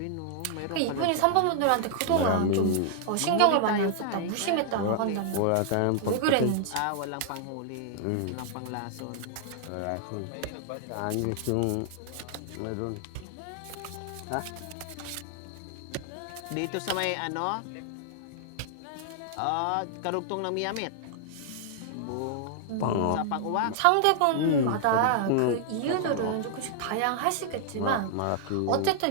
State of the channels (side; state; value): both; different; correlation -0.01